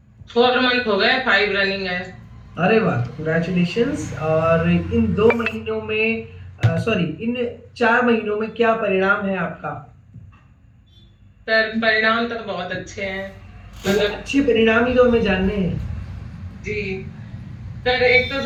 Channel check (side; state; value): both; identical; correlation 1.00